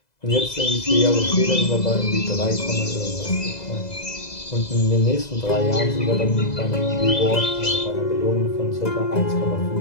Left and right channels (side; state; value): right; late; 2.0 ms